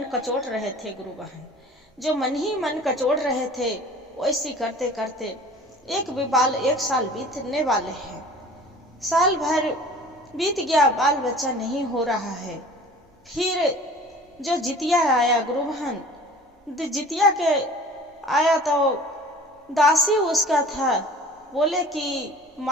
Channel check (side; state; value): both; normal; correlation 0.45